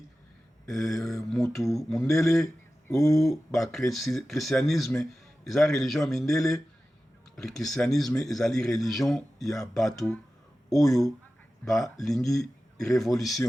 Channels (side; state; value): both; normal; correlation 0.94